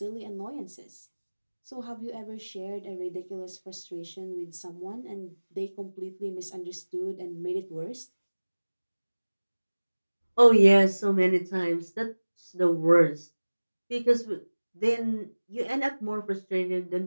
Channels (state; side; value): inverted; both; correlation -1.00